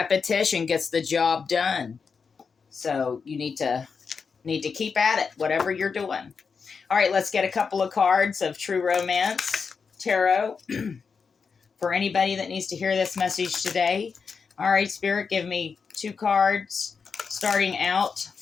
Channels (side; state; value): right; quieter; 5.5 dB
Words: gets the job done. So you need to keep at it, whatever you're doing. All right, let's get a couple of cards of True Romance Tarot for anybody that needs to hear this message today. All right, Spirit, give me 2 cards starting out